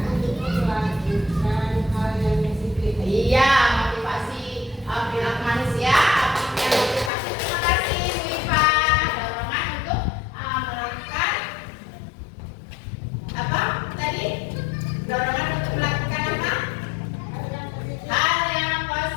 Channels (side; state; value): right; drops out; at 7.1 s